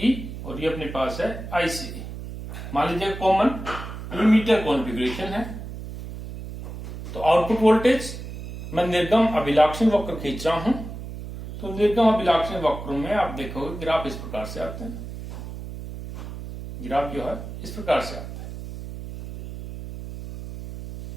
और ये अपने पास है ICE। मान लीजिए कॉमन इमीटर कॉन्फ़िगरेशन है, तो आउटपुट वोल्टेज मैं निर्गम अभिलाक्षणिक वक्र खींच रहा हूं, तो निर्गम अभिलाक्षणिक वक्र में आप देखोगे ग्राफ इस प्रकार से आते हैं। ग्राफ जो है इस प्रकार से आता है।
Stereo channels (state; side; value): noise; right; hum, 10 dB below the sound